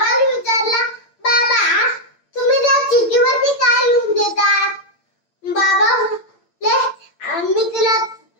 विचारला, बाबा तुम्ही त्या चिठ्ठीवरती काय लिहून देतात? बाबा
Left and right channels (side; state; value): right; late; 8.8 ms